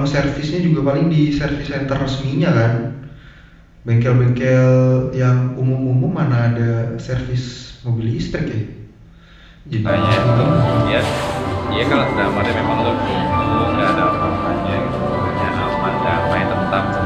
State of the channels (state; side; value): identical; both; correlation 1.00